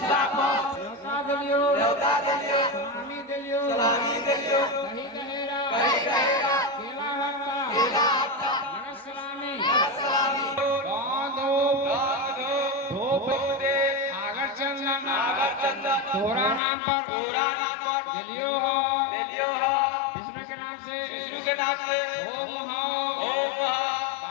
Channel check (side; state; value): right; drops out; at 16.6 s